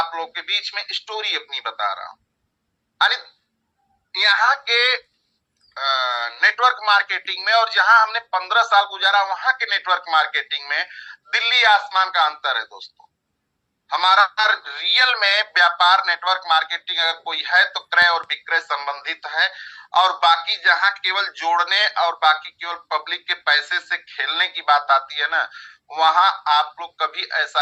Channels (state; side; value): identical; both; correlation 1.00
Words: लोग के बीच में स्टोरी अपनी बता रहा हूँ। यानी यहाँ के नेटवर्क मार्केटिंग में, और जहां हमने 15 साल गुजारा वहां के नेटवर्क मार्केटिंग में दिल्ली आसमान का अंतर है दोस्तों। हमारा रियल में व्यापार नेटवर्क मार्केटिंग अगर कोई है तो क्रय और विक्रय संबंधित है। और बाकी जहां केवल जोड़ने और बाकी केवल पब्लिक के पैसे से खेलने की बात आती है ना, वहां आप लोग कभी ऐसा